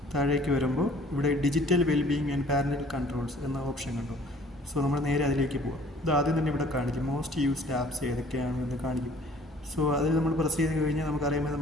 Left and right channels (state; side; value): normal; both; correlation 0.54